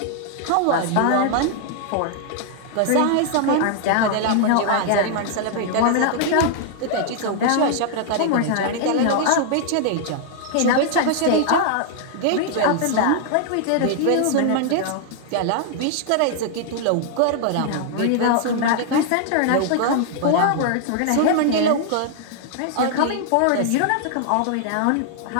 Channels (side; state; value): both; different; correlation 0.00